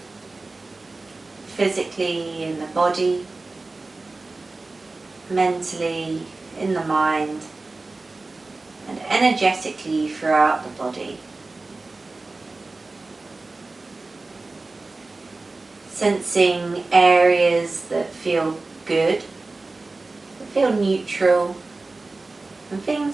Physically in the body, mentally in the mind, and energetically throughout the body. Sensing areas that feel good, that feel neutral, and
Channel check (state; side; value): quieter; left; 3.4 dB